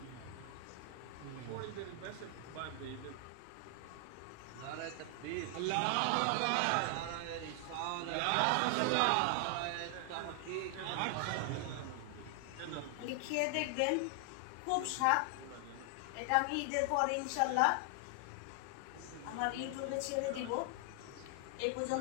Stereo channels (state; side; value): different; both; correlation 0.00